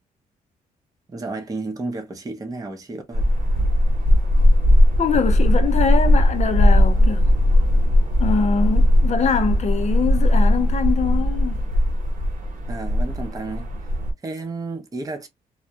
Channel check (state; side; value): normal; both; correlation 0.86